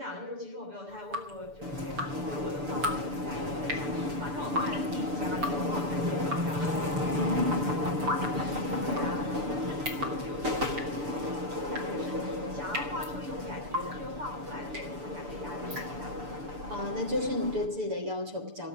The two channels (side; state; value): left; late; 6.9 ms